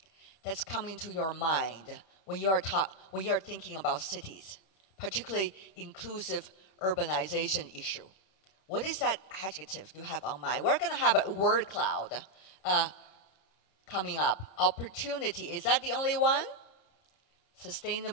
that's coming to your mind when you're thinking about cities, particularly inclusive urbanization issue? What is that adjective you have on mind? We're going to have a word cloud coming up. Opportunity, is that the only one?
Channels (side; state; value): right; late; 26 ms